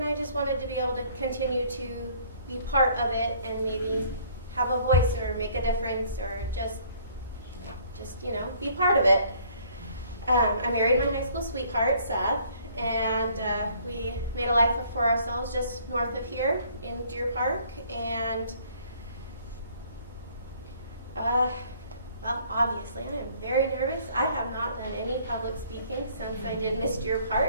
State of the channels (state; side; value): inverted; both; correlation -0.59